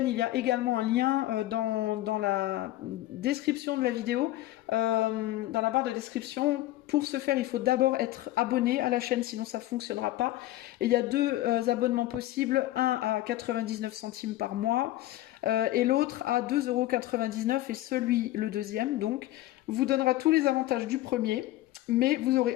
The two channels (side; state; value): right; quieter; 15.6 dB